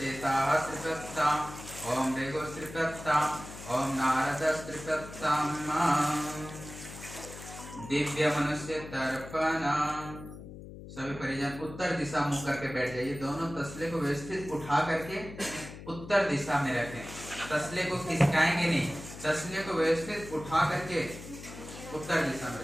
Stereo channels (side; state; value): left; noise; hum, 13 dB below the sound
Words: त्रिपत्ताम, ओम भृगुः त्रिपत्ताम, ओम नारदः त्रिपत्ताम। दिव्य मनुष्य तर्पण। सभी परिजन उत्तर दिशा मुख करके बैठ जाइए। दोनों तसले को व्यवस्थित उठा करके उत्तर दिशा में रखें। तसले को खिसकाएंगे नहीं, तसले को व्यवस्थित उठा करके उत्तर दिशा में